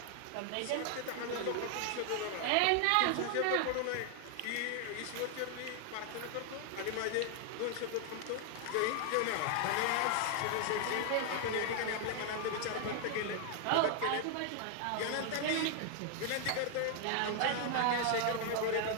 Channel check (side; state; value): both; different; correlation 0.00